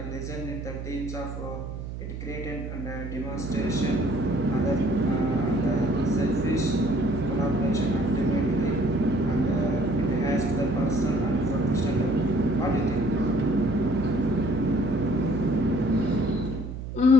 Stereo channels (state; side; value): noise; right; hum, 8 dB below the sound